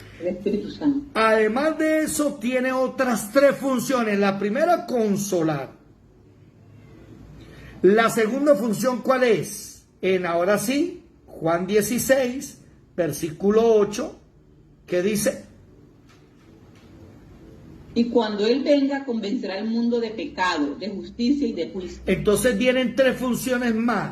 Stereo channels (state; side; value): identical; both; correlation 1.00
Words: El Espíritu Santo. Además de eso, tiene otras tres funciones. La primera, consolar. La segunda función, ¿cuál es? Ahora sí, Juan 16, versículo 8, que dice: Y cuando Él venga, convencerá al mundo de pecado, de justicia y de juicio. Entonces vienen tres funciones